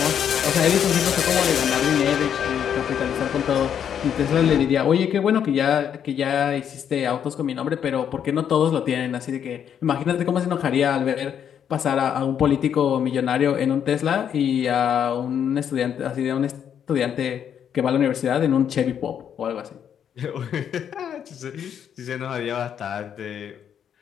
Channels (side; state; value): right; quieter; 8.7 dB